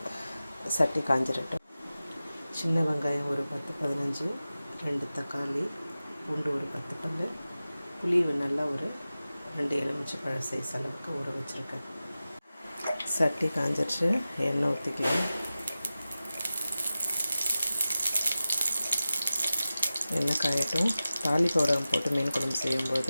சட்டி காஞ்சிரட்டும். சின்ன வெங்காயம் ஒரு 10-15, 2 தக்காளி, பூண்டு ஒரு 10 பல், புளி நல்லா ஒரு 2 எலுமிச்சைப்பழ சைஸ் அளவுக்கு ஊற வச்சுருக்கேன். சட்டி காஞ்சிருச்சு, எண்ணெய் ஊற்றிக்கலாம். எண்ணெய் காயட்டும். தாளிப்பவுடம் போட்டு மீன் குழம்பு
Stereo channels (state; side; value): inverted; both; correlation -0.95